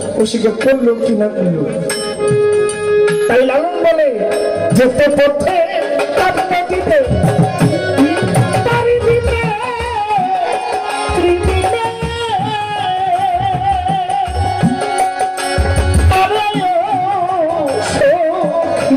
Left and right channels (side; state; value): both; identical; correlation 1.00